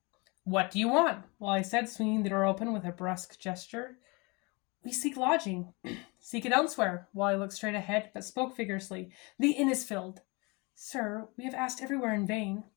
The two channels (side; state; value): right; quieter; 27.9 dB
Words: "What do you want?" Wally said, swinging the door open with a brusque gesture. "We seek lodging." "Seek it elsewhere." Wally looked straight ahead, but spoke vigorously. "The inn is filled." "Sir, we have asked everywhere in vain.